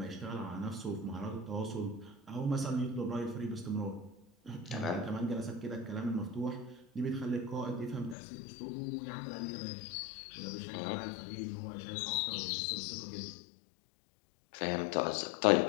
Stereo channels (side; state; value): right; drops out; at 8.2 s